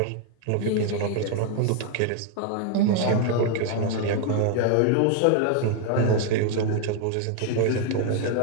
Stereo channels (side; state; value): both; different; correlation 0.00